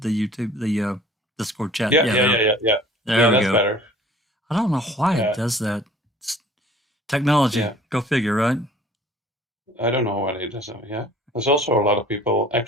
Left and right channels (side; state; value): both; normal; correlation 0.51